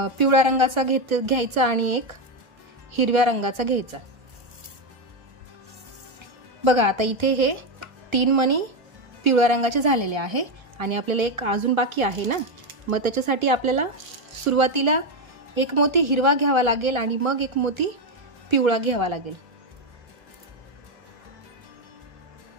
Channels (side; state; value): left; late; 1.3 ms